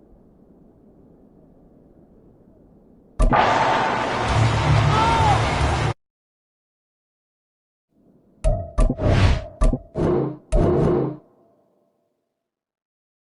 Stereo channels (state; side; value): identical; both; correlation 1.00